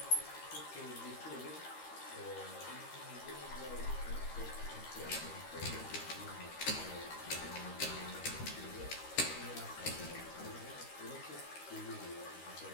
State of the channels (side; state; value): right; late; 13 ms